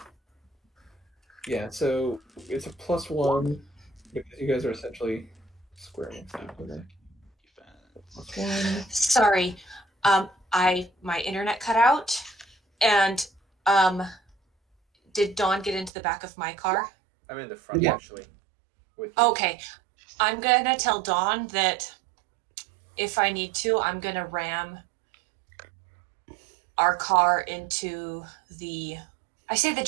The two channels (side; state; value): left; drops out; at 15.9 s